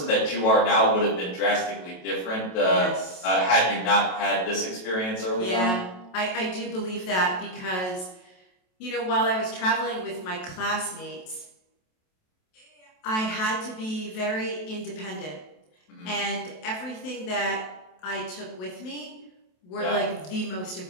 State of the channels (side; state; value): right; late; 27 ms